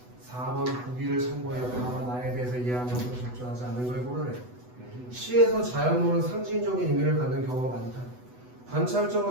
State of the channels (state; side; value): late; left; 8.1 ms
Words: 4번 보기를 참고해 다만 나에 대해서 이해하면서 적절하지 않은 걸 고르래. 시에서 자연물은 상징적인 의미를 갖는 경우가 많다.